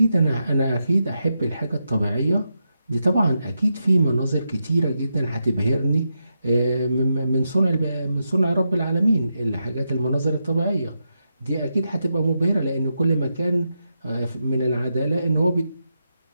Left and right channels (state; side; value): inverted; both; correlation -0.86